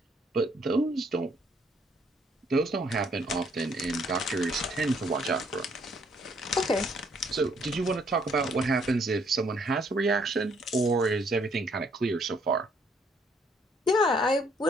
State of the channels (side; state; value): both; normal; correlation 0.67